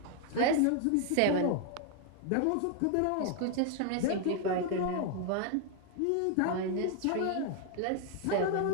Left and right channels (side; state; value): both; different; correlation 0.00